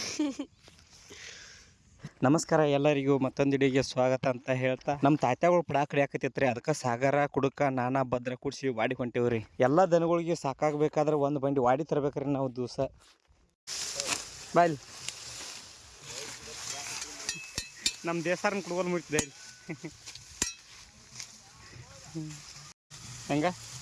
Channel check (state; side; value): identical; both; correlation 1.00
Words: ನಮಸ್ಕಾರ ಎಲ್ಲರಿಗೂ ಮತ್ತೊಂದು ವಿಡಿಯೋಗೆ ಸ್ವಾಗತ ಅಂತ ಹೇಳ್ತಾ ನಮ್ಮ ತಾತ್ಯಾಗಳು ಪಡಾಕ್ ಕಡಿಯಾಕತ್ತೈತ್ರಿ. ಅದಕ್ಕೆ ಸಾಗರ ಕುಡುಕ ನಾನಾ ಭದ್ರ ಕೂಡಿಸಿ ವಾಡಿ ಹೊಂಟೇವ್ರಿ. ಎಲ್ಲ ದನಗಳಿಗೆ ಸಾಕಾಗಬೇಕಾದ್ರೆ ಒಂದು ಬಂಡಿ ವಾಡಿ ತರಬೇಕ್ರಿ ನಾವು ದಿವಸ. ಬಾಯ್ಲಿ ನಮ್ಮ ದೇಸಾರನ್ನ ಕುಡ್ಗೋಲ್ ಮುಟ್ತಿದೆ ಹೆಂಗ